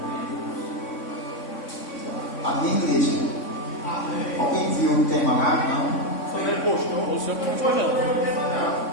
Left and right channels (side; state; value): right; late; 3.6 ms